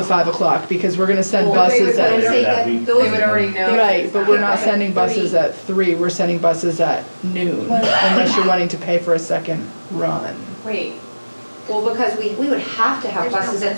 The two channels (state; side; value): inverted; both; correlation -1.00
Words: 5 o'clock, because we're gonna send buses They would at, already know. right, but we're not sending buses at 3, we're sending buses at noon, unless you're wanting to pay for a second run. Wait, Well, because we would have to have buses at